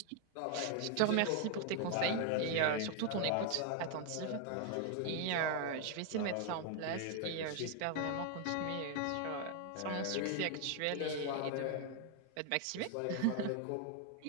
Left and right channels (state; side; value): different; both; correlation 0.00